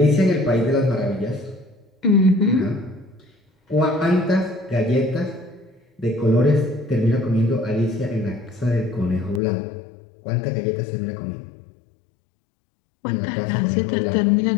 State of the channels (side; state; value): right; drops out; at 9.4 s